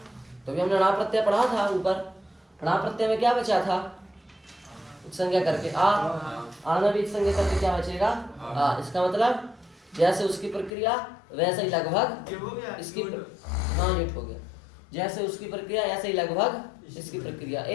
तो अभी हमने णा प्रत्यय पढ़ा था ऊपर। णा प्रत्यय में क्या बचा था? संज्ञा करके आ, आना भी संज्ञा करके क्या बचेगा? आ। इसका मतलब जैसे उसकी प्रक्रिया वैसे ही लगभग इसकी हाँ युट हो गया। जैसे उसकी प्रक्रिया ऐसे ही लगभग इसकी प्रक्रिया।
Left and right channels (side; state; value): right; drops out; at 10.7 s